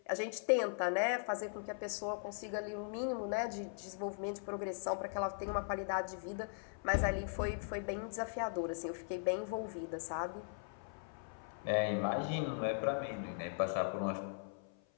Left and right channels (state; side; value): silent; right; 52 dB below the other